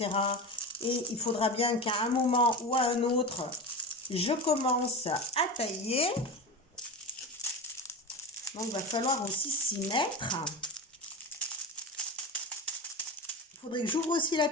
et il faudra bien qu'à un moment ou à un autre, je commence à tailler. Donc, il va falloir aussi s'y mettre. Il faudrait que j'ouvre aussi la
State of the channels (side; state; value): both; normal; correlation 0.26